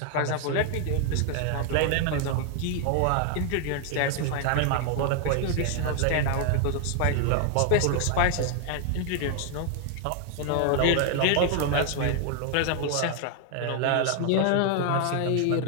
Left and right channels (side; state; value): both; different; correlation 0.00